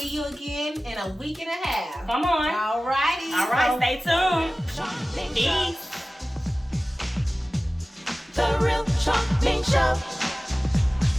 you again in a week and a half. Come on. All righty. All right, stay tuned. Peace. The Real Charming Show.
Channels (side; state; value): both; normal; correlation 0.97